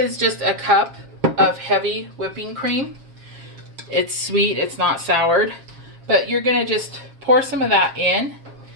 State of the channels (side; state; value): left; late; 7.4 ms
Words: just a cup of heavy whipping cream. It's sweet, it's not soured, but you're going to just pour some of that in,